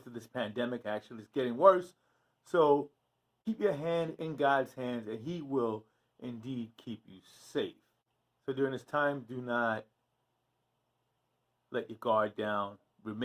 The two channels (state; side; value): identical; both; correlation 1.00